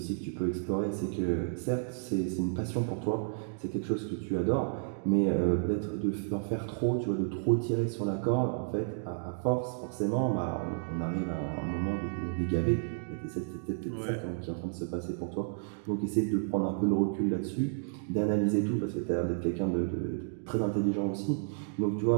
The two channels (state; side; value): silent; left; digital silence